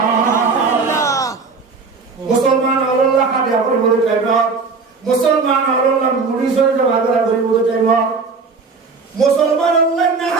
মুসলমান আল্লাহ মুরিসের জমাগরা গরিব টাইম মুসলমান আল্লাহ না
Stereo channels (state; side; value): quieter; left; 4.6 dB